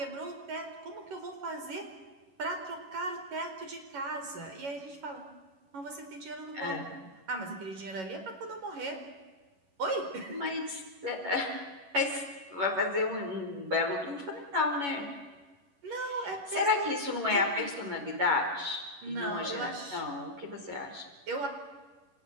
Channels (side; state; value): left; late; 11 ms